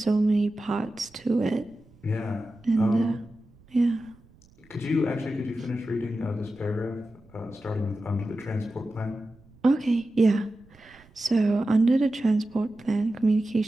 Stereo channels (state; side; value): noise; right; rumble, 27 dB below the sound